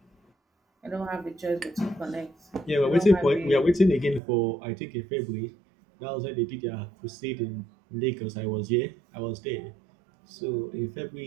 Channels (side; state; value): left; drops out; at 4.2 s